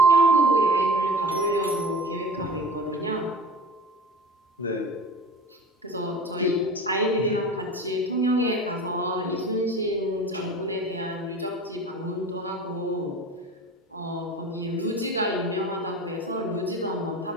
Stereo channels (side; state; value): both; normal; correlation 0.37